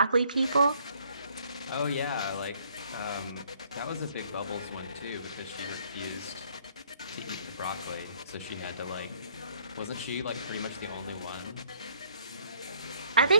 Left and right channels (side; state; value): both; inverted; correlation -0.62